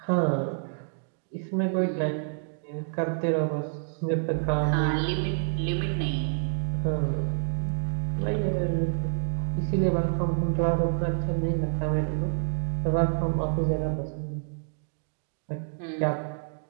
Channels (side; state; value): left; silent; digital silence